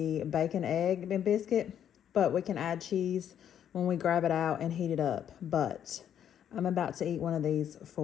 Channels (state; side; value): quieter; right; 9.6 dB